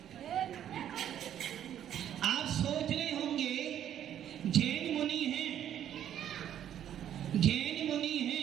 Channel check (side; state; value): left; quieter; 10.4 dB